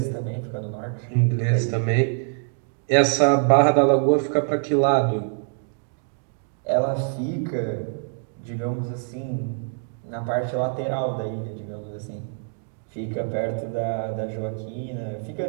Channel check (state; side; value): silent; left; 58 dB below the other